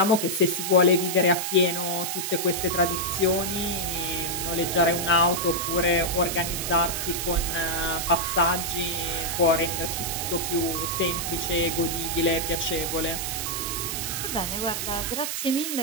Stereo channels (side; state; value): right; noise; hiss, 3 dB below the sound